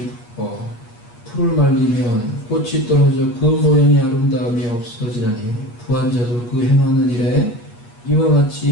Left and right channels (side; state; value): right; late; 8.5 ms